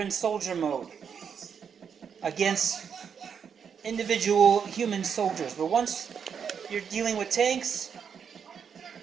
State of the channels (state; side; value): quieter; left; 7.1 dB